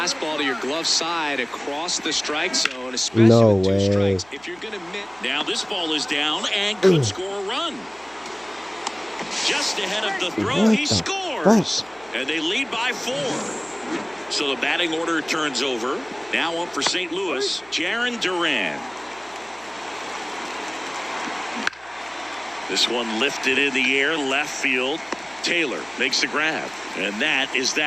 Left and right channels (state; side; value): noise; right; hum, 28 dB below the sound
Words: to your glove side across the strike zone, especially with 2 strikes, if you're going to miss. Now this ball is down and could score a run. Just ahead of the throw, he scores. And they lead by 4. So the batting order turns over. Now up for St. Louis, Jarren Duran. This one lifted in the air, left field. Taylor makes the grab. And that is